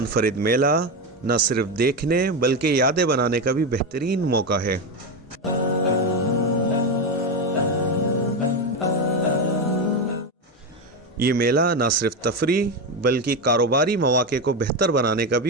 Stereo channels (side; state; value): both; normal; correlation 0.13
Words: मेला न सिर्फ देखने बल्कि यादें बनाने का भी बेहतरीन मौका है। ये मेला न सिर्फ तफरीह बल्कि कारोबारी मौके को बेहतर बनाने का